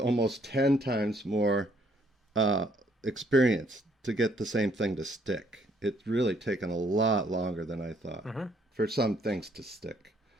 10 times more uh, experience to get the same thing to stick. It's really taken a lot longer than I thought Hmm. for some things to stick.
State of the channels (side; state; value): both; normal; correlation 0.67